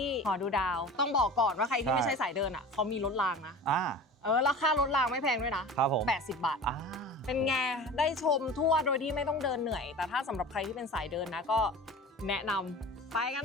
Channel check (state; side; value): normal; both; correlation 0.37